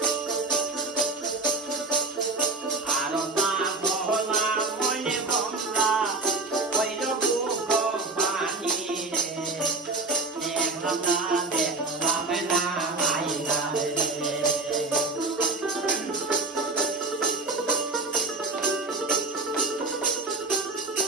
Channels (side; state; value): left; quieter; 3.4 dB